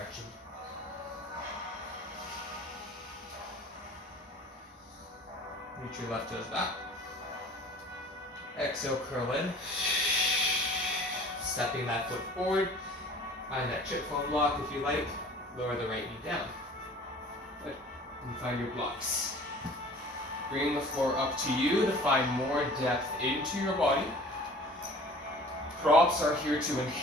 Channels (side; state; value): both; normal; correlation 0.46